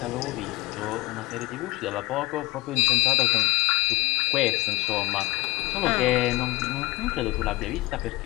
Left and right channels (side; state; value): right; quieter; 21.0 dB